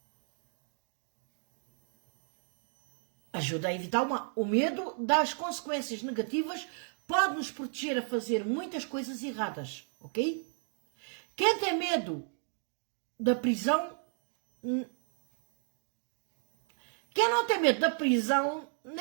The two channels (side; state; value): left; silent; 55 dB below the other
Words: ajuda a evitar o medo das consequências negativas, pode nos proteger a fazer muitas coisas erradas, ok? Quem tem medo da prisão, quem não tem medo da prisão